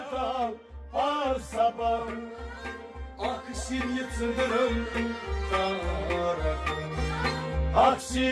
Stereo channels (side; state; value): both; identical; correlation 1.00